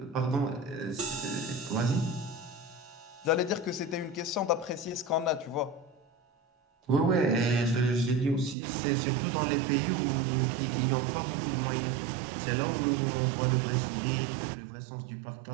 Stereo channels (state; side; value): drops out; left; at 8.6 s